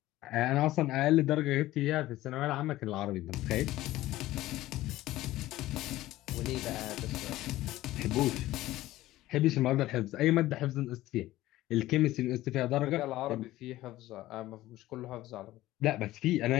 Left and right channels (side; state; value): right; quieter; 16.1 dB